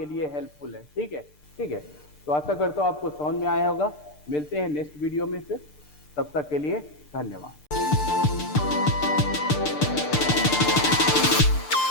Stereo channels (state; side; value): late; right; 6.7 ms